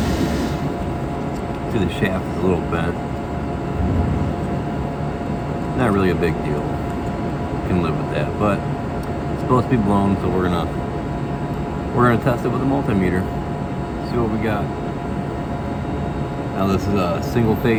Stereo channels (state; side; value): identical; both; correlation 1.00